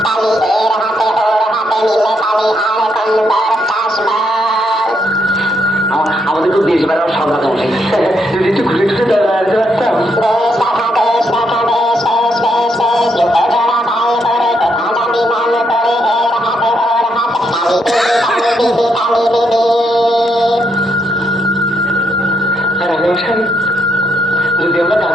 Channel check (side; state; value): both; normal; correlation 0.77